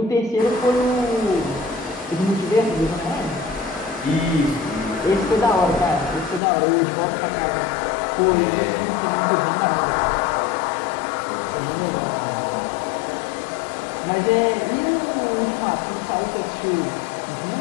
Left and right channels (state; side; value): drops out; right; at 6.4 s